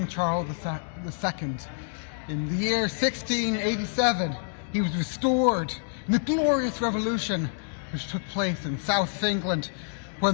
Charles II. In the year 1687, he was restored in the glorious revolution which took place in South England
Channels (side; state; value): right; silent; digital silence